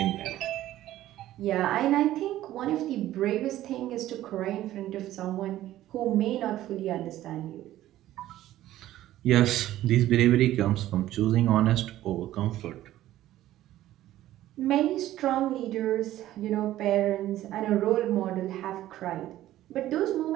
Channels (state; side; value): quieter; left; 14.1 dB